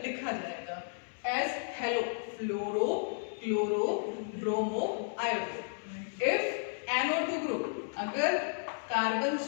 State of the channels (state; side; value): silent; right; 56 dB below the other